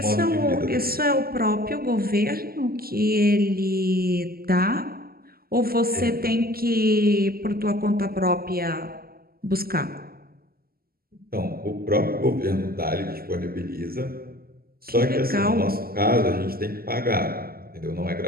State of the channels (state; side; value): late; left; 0.44 ms